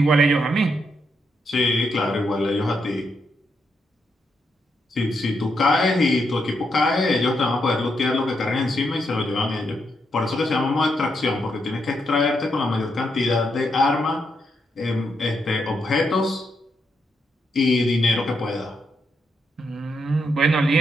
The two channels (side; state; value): both; normal; correlation 0.80